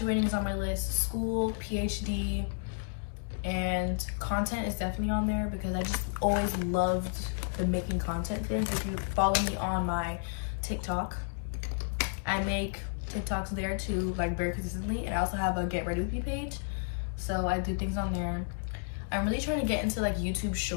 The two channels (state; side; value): silent; right; 57 dB below the other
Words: is on my list, school, PhD, and content is definitely on there, because I just always loved the making content thing. If you follow me on my TikTok, I make TikToks there too, like very consistently, and I also have a Get Ready With Me page, so I do things on there. I'm really trying to get into like YouTube